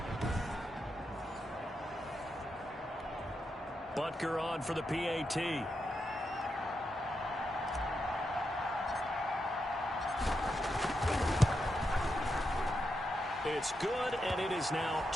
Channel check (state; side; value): normal; both; correlation 0.85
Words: Butker on for the PAT. It's good, and it is now